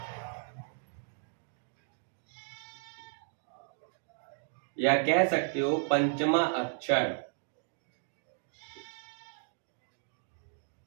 या कह सकते हो पंचमा अक्षर।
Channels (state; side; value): silent; left; digital silence